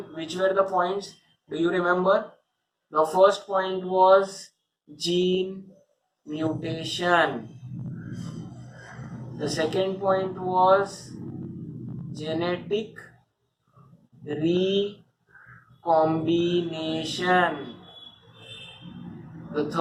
which were the points? Do you remember? The first point was gene mutation. The second point was genetic recombination. The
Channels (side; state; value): both; identical; correlation 1.00